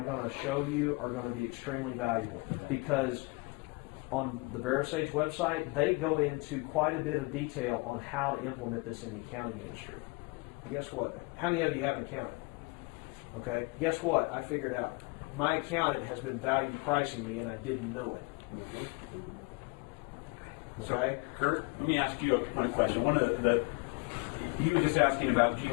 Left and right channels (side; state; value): right; quieter; 27.9 dB